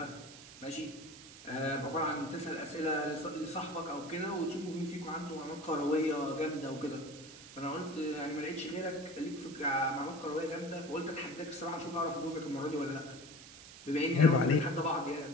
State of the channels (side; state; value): right; noise; hiss, 16 dB below the sound